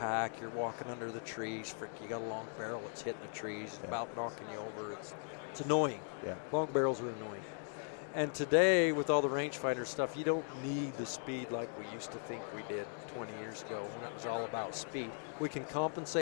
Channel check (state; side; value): silent; right; 52 dB below the other